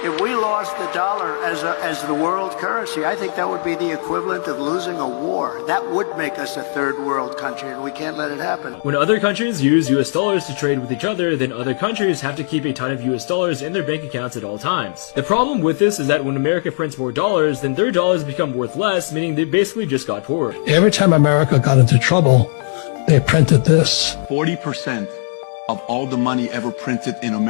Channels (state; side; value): silent; right; digital silence